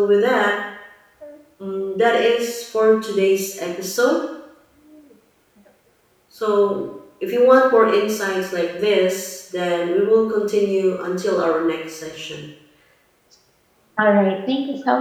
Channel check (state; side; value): identical; both; correlation 1.00